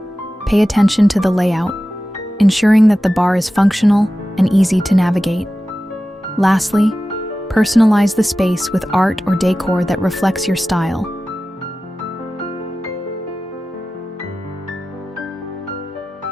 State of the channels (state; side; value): normal; both; correlation 0.94